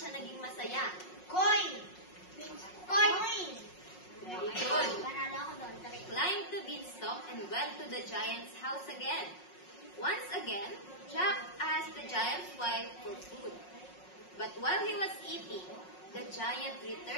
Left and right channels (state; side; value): late; right; 5.5 ms